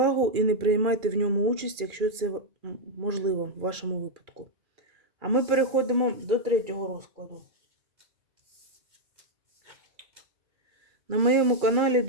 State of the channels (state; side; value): late; left; 2.4 ms